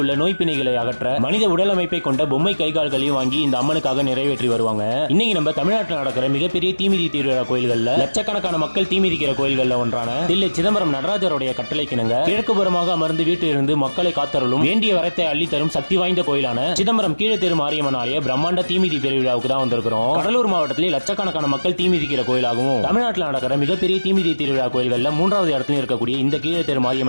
உள்ள நோய் பிணைகளை அகற்ற மனித உடல் அமைப்பை கொண்ட பொம்மை கைகால்களையும் வாங்கி இந்த அம்மனுக்காக நிறைவேற்றி வருவாங்க. இன்னைக்கு நம்ம தமிழ்நாட்டில் நடக்கிற மிகப்பெரிய தீமிதி திருவிழா கோயில்கள்ல லட்சக்கணக்கான மக்கள் தீமிதிக்கிற கோயில்கள்ல ஒன்றான தில்லை சிதம்பரம் நடராஜருடைய கட்டளைக்கிணங்க கிழக்கு புறமாக அமர்ந்து வீட்டிலிருந்து மக்களை காத்தருளும் வேண்டிய வரத்தை அள்ளி தரும் சக்தி வாய்ந்த கோயிலான சிதம்பரம் கீழத்தெரு மாரியம்மன் ஆலய பிரம்மாண்ட தீமிதி பெருவிழாவுக்கு தான் வந்திருக்கிறோம். கடலூர் மாவட்டத்திலே லட்சக்கணக்கான மக்கள் தீமிதிக்கிற கோயிலாகவும் தமிழ்நாட்டில் நடக்கிற மிகப்பெரிய தீமிதி திருவிழா கோயில்கள்ல 3வது இடத்துல இருக்கக்கூடிய இந்த கீழத்தெரு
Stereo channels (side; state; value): both; inverted; correlation -1.00